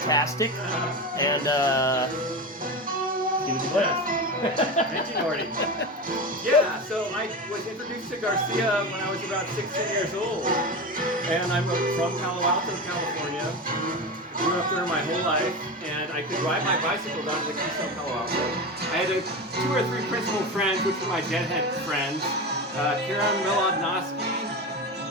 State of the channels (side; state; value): both; normal; correlation 0.23